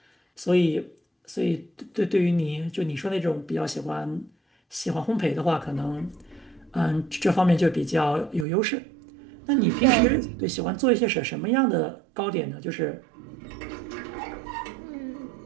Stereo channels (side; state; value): left; drops out; at 8.5 s